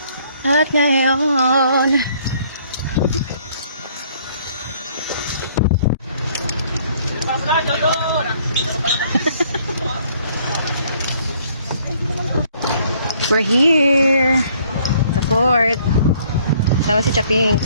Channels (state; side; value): inverted; both; correlation -0.62